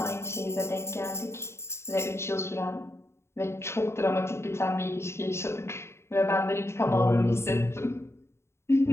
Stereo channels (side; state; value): right; late; 0.13 ms